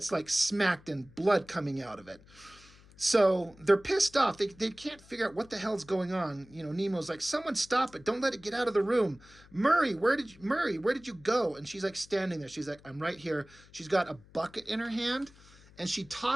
like smacked and blood coming out of it. So they're pissed off. They can't figure out what the hell's going on. You know, Nemo's like, someone stop it. Don't let it get out of the room. Murray, where did you go? And she's like standing there. She's like, I'm right here. She's got a bucket in her hand. And she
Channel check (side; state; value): left; noise; hum, 25 dB below the sound